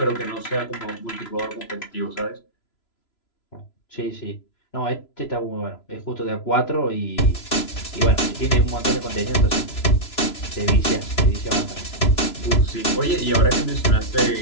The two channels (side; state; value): right; late; 3.0 ms